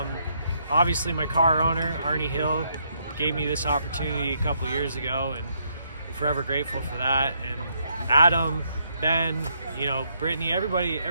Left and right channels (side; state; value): both; inverted; correlation -0.74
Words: Obviously, my car owner, Arnie Hill, gave me this opportunity a couple years ago, and I'm forever grateful for that. And Adam, Ben, you know, Brittany, everybody